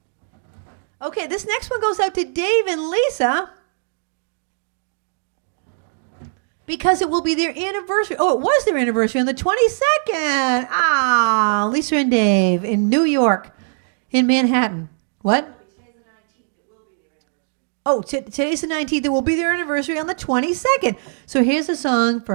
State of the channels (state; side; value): silent; left; digital silence